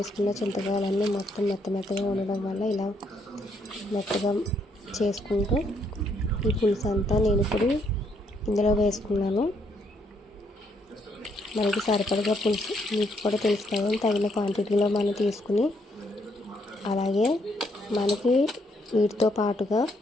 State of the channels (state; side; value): normal; both; correlation 0.73